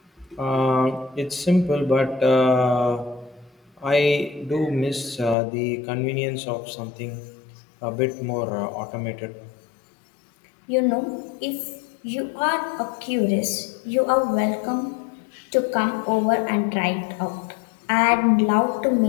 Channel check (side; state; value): right; drops out; at 5.4 s